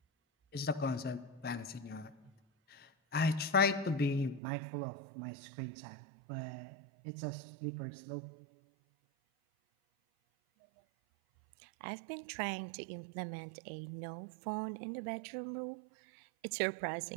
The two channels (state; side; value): drops out; left; at 4.4 s